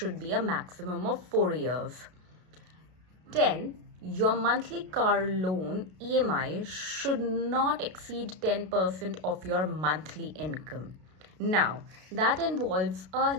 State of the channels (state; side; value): late; left; 32 ms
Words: be a maximum of 4 years. 10. Your monthly car loan EMI should not exceed 10% of your monthly income. Now, that involves a